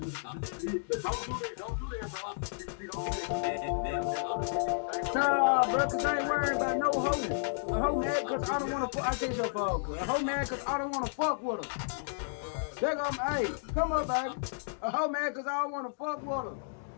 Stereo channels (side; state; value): right; silent; digital silence